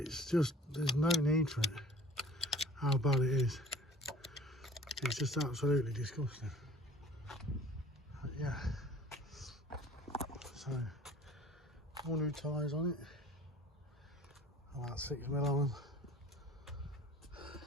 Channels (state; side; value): normal; both; correlation 0.48